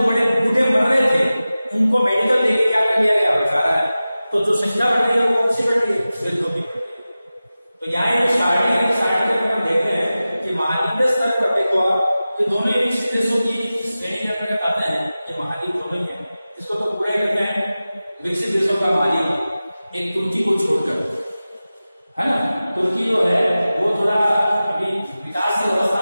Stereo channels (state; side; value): inverted; both; correlation -0.95